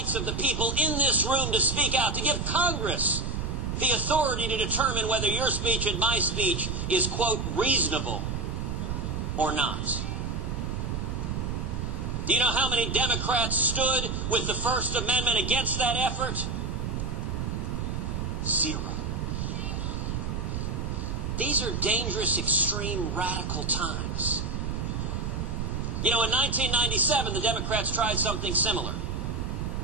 of the people in this room to speak out, to give Congress the authority to determine whether your speech and my speech is, quote, reasonable or not. Do you know how many Democrats stood with the First Amendment against that effort? 0. These are dangerous, extreme, radical times. You know, in 1997, the Democrats tried something similar.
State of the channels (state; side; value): noise; right; rumble, 2 dB below the sound